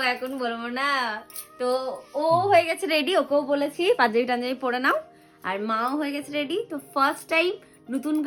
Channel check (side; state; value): both; identical; correlation 1.00